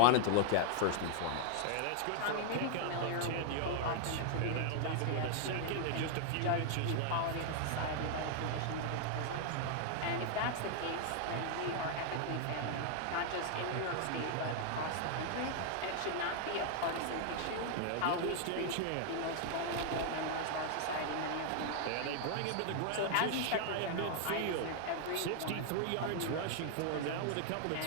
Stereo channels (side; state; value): both; different; correlation 0.00